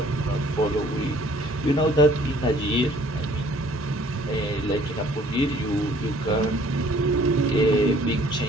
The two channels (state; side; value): normal; both; correlation 0.57